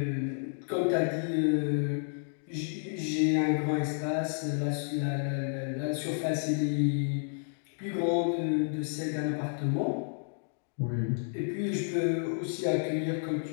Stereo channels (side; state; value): right; silent; digital silence